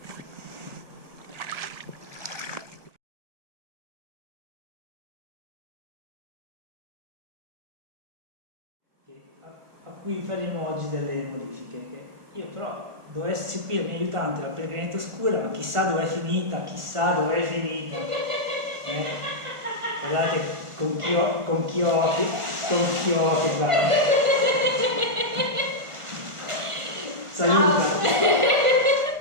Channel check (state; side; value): late; left; 1.5 ms